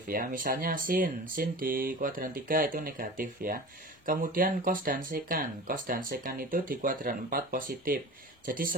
ya. Misalnya sin di kuadran 3 itu negatif ya. Kemudian cos dan sekan. Cos dan sekan itu di kuadran 4 positif. Jadi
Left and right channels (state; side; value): normal; both; correlation 0.36